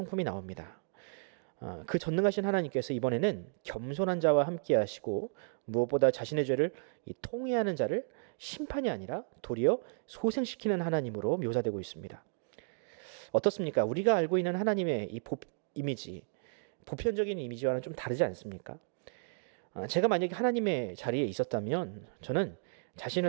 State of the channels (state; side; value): silent; left; digital silence